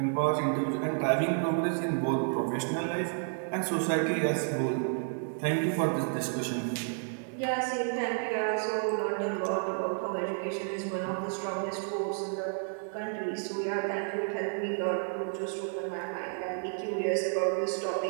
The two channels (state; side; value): silent; left; 57 dB below the other